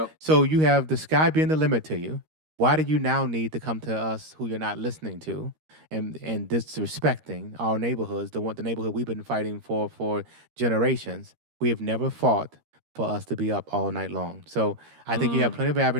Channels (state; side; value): late; left; 13 ms